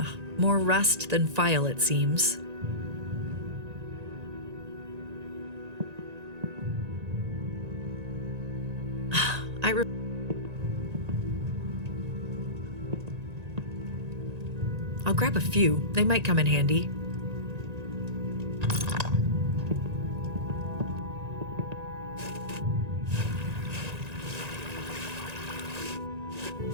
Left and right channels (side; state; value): left; late; 1.9 ms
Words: More rust than file, it seems. I'll grab a few. They might come in handy.